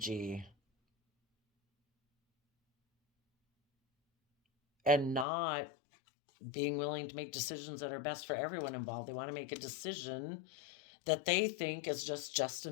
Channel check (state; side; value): drops out; right; at 5.2 s